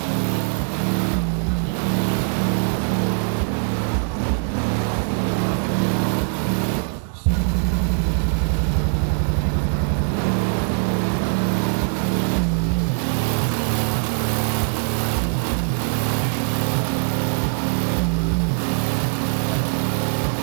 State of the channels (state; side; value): silent; left; digital silence